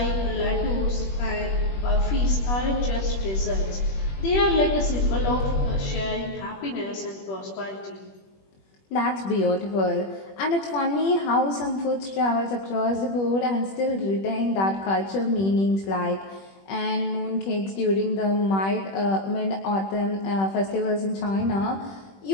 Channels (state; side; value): late; right; 21 ms